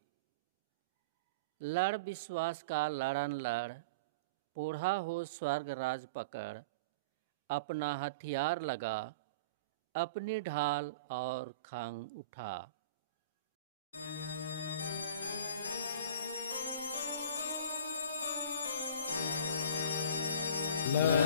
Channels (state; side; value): inverted; both; correlation -0.38